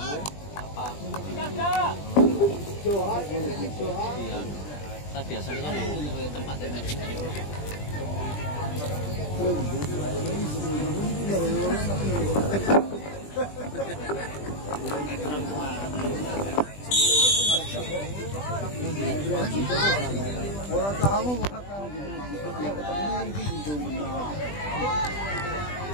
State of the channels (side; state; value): right; late; 20 ms